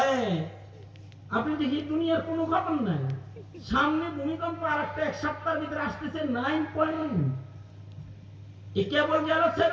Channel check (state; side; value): identical; both; correlation 1.00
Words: আপনি দেখি দুনিয়ার কোনো খবর নাই, সামনে ভূমিকম্প আর একটা এক সপ্তাহের ভিতরে আসতেছে 9.1, কেবল গেল